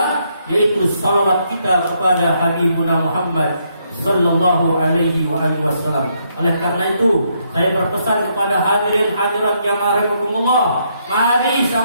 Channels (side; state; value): both; inverted; correlation -0.75